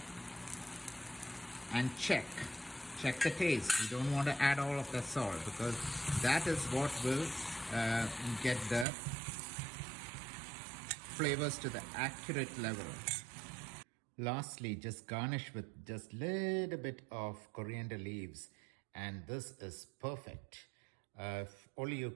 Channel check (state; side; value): drops out; left; at 8.8 s